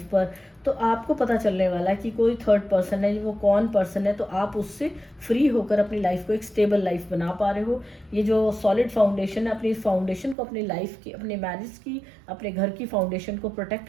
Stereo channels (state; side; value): drops out; left; at 10.4 s